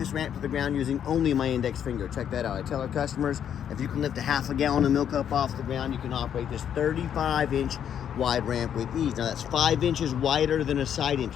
ramp to the ground using only my index finger. Check that out. I tell our customers, if you can lift a half a gallon of milk up off the ground, you can operate this 35-inch wide ramp with ease. Now that's 5 inches wider than a side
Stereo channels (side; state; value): right; quieter; 9.1 dB